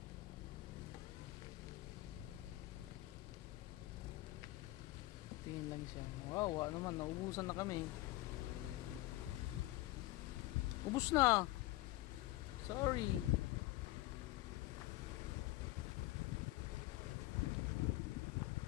tingin lang siya. Wow, naman, naubusan na kami. Ubus na. Sorry.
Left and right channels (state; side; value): quieter; right; 18.1 dB